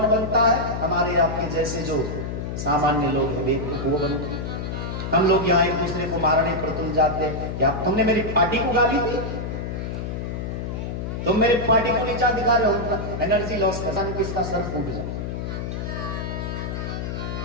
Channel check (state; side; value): noise; left; hum, 4 dB below the sound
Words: बनता है? हमारे आपके जैसे जो सामान्य लोग हैं, बेवकूफ वो बनते। हम लोग यहाँ एक दूसरे को मारने पर तुल जाते हैं। क्या तुमने मेरी पार्टी को गाली दी? तुम मेरे पार्टी को नीचा दिखा रहे हो, एनर्जी लॉस करने किसका सर फूट जाए।